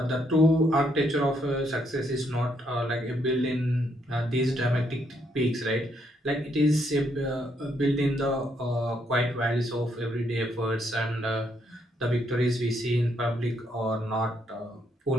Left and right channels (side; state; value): both; normal; correlation 0.74